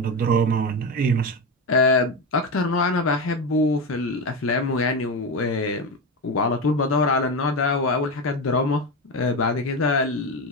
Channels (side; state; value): both; normal; correlation 0.16